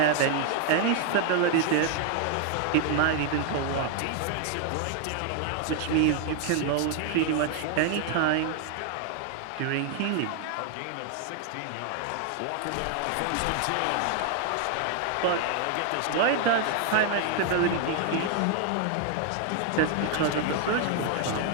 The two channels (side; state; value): both; different; correlation 0.00